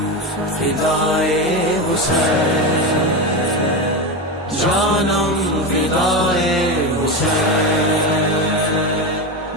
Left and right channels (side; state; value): both; normal; correlation 0.18